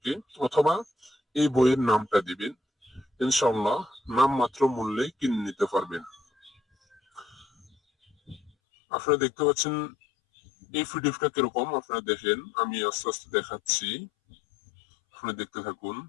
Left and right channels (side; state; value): right; drops out; at 8.5 s